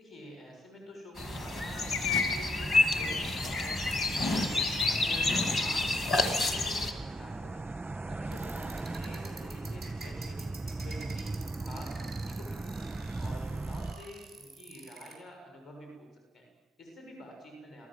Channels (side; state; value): both; normal; correlation 0.75